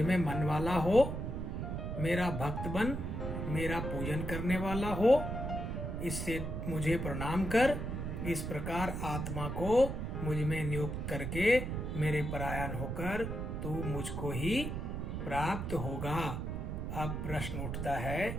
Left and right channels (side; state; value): right; noise; rumble, 3 dB below the sound